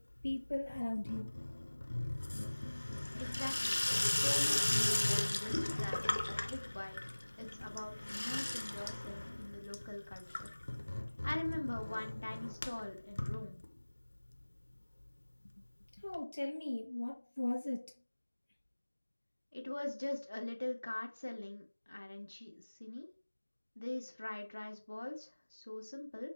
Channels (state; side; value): inverted; both; correlation -1.00